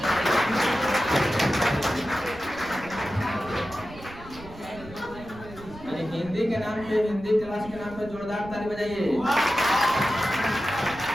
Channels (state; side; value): noise; right; rumble, 17 dB below the sound